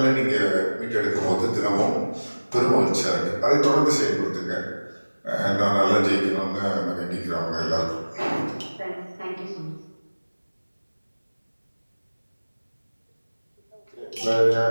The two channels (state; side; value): inverted; both; correlation -1.00